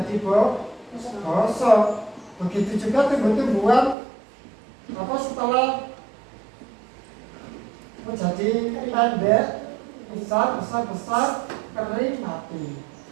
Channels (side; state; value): left; drops out; at 4.0 s